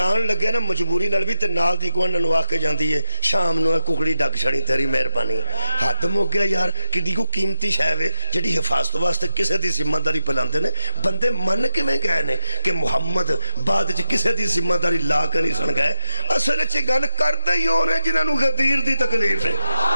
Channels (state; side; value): inverted; both; correlation -1.00